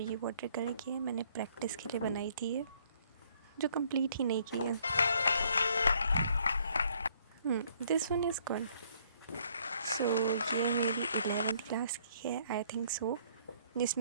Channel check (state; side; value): inverted; both; correlation -0.64